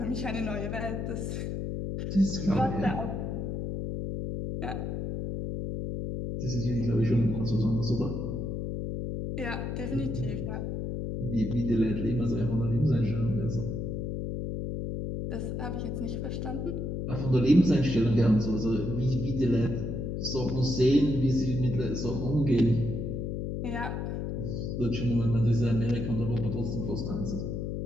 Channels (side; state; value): left; noise; hum, 3 dB below the sound